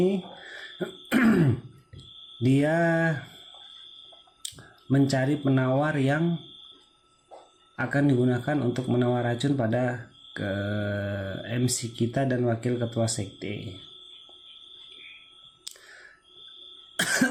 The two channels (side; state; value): both; identical; correlation 1.00